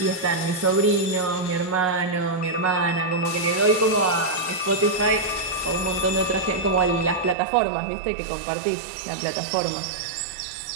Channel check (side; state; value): left; drops out; at 7.4 s